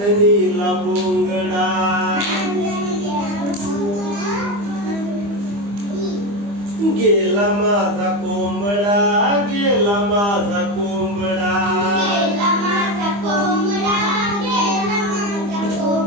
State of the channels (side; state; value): left; late; 25 ms